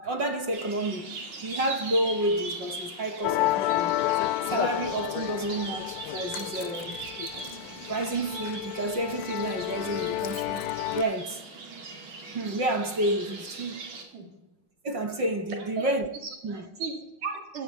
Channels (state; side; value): late; left; 5.5 ms